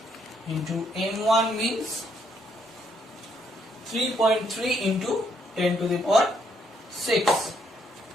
into m1 means 3.3 into 10 to the power 6.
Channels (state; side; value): normal; both; correlation 0.72